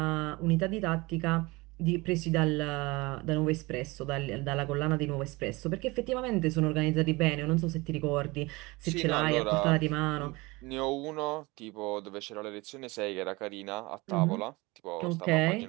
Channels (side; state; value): left; quieter; 23.6 dB